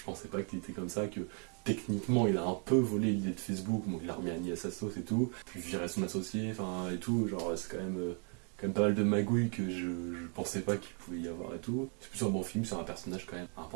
pensais pas qu'il était comme ça, que techniquement il a un peu volé l'idée de Facebook, donc il a remis Annie à sa sauce et tout, puis viré son associé, enfin et tout, genre c'est quand même pas mal de magouilles que je pensais pas qu'il pouvait y avoir et tout. C'est plutôt un bon film sur un personnage quand même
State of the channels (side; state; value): left; quieter; 39.5 dB